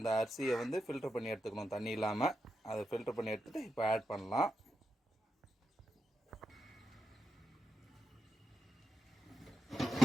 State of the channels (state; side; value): normal; both; correlation 0.86